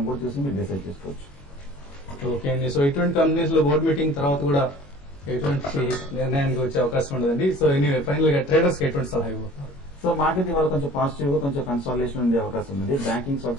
కూడా చూసి మీరు డిసైడ్ చేసుకోవచ్చు. ఓకే అండి. సో ఇటువంటి కంపెనీస్ లో బోర్డు మీటింగ్ తర్వాత కూడా ఎటువంటి నిర్ణయానికి వచ్చే అవకాశం ఉండదండి. సో ఎనీవే ఫైనల్ గా ట్రేడర్స్ కి ఎటువంటి సలహా ఇవ్వబోతున్నారు? సో మార్కెట్ ఇవాళ కొంచెం పాజిటివ్ గా కొంచెం కన్సాలిడేషన్ ఉండే అవకాశం ఉంది. బ్యాంకింగ్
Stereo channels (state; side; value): late; right; 21 ms